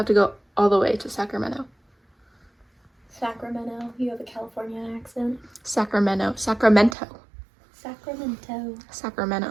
to go all the way to Sacramento. Sacramento. You have a California accent. Sacramento.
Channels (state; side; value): drops out; left; at 7.0 s